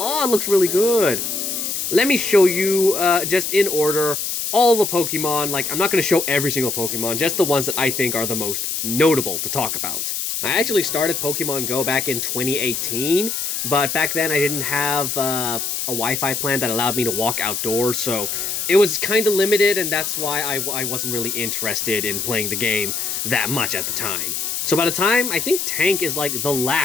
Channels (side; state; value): left; noise; hiss, 2 dB below the sound